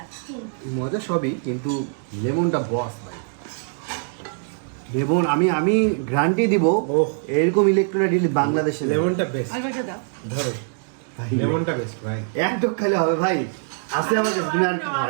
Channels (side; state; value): left; silent; digital silence